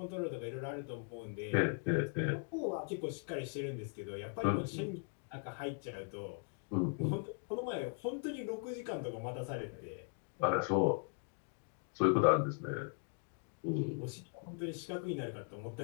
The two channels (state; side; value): silent; right; 52 dB below the other